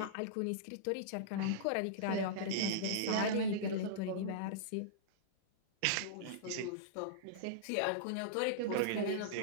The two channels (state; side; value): different; both; correlation -0.03